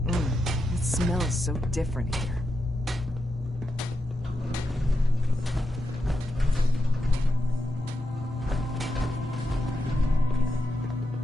It smells so different here.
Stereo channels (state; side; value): normal; both; correlation 0.86